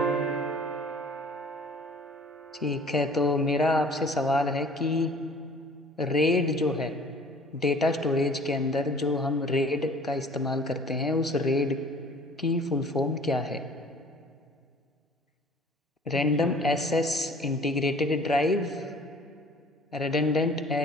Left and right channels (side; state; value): both; normal; correlation 0.50